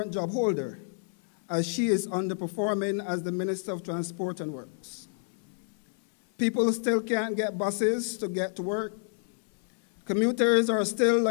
job holder, as she is underperforming as the Minister of Transport and Works. People still can't get buses to get to work. Commuters are still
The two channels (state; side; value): silent; right; 59 dB below the other